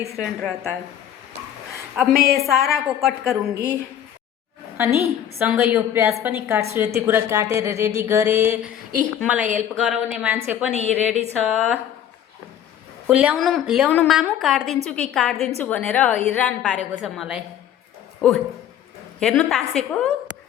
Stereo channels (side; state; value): right; quieter; 10.2 dB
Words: रहता है। अब मैं ये सारा को कट करूँगी अनि सँगै यो प्याज पनि काट्छु। यति कुरा काटेर रेडी गरेँ। मलाई हेल्प गराउने मान्छे पनि रेडी छ। ल्याउनु मामु, काट्दिन्छु कि काट्दिन्छु भनेर हैरान पारेको छ मलाई। हेर्नु तासेको।